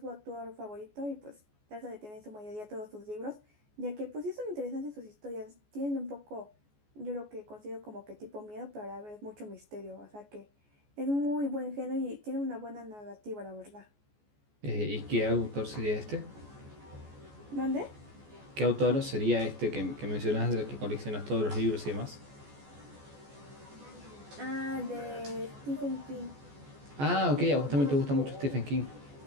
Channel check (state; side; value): late; left; 14 ms